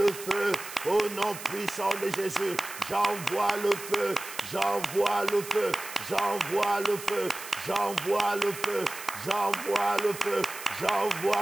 feu. Au nom puissant de Jésus, j'envoie le feu, j'envoie le feu, j'envoie le feu, j'envoie le feu, j'envoie le feu,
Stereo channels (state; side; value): noise; right; hiss, 12 dB below the sound